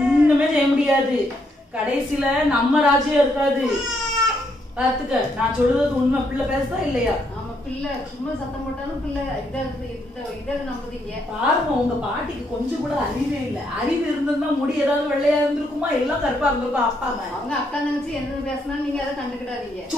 செய்ய முடியாது. கடைசியில நம்ம ராஜ்யம் இருக்காது. பாத்துக்க, நான் சொல்றது உண்மை. பிள்ளை பேசுதா இல்லையா? ஆமா, பிள்ளை சும்மா சத்தம் போட்டாலும் பிள்ளை இதை நம்புதீங்க. பாருங்க, உங்க பாட்டிக்கு கொஞ்சம் கூட அறிவே இல்ல. அறிவு இருந்திருந்தா முடி ஏதாவது வெள்ளையா இருந்திருக்குமா? எல்லாம் கருப்பா இருந்திருக்கும். அப்பா அவங்க அக்கா நினைச்சு என்ன பேசினாலும் நீங்க அதை கண்டுக்கிடாதீங்க.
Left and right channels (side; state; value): both; normal; correlation 0.75